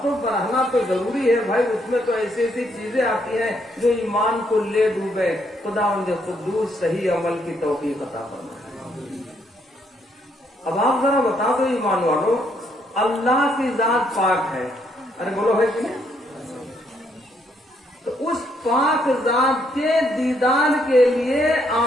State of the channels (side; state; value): both; normal; correlation 0.73